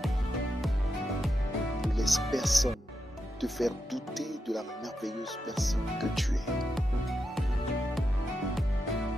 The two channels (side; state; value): both; normal; correlation 0.87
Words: Ne laisse personne te faire douter de la merveilleuse personne que tu es.